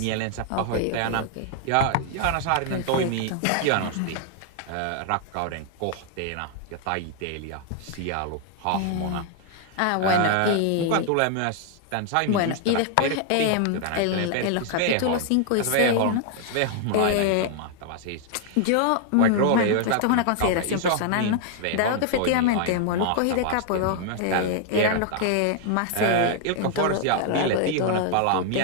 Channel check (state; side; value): different; both; correlation 0.00